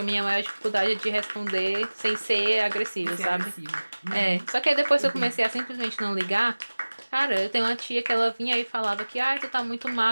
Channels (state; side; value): inverted; both; correlation -1.00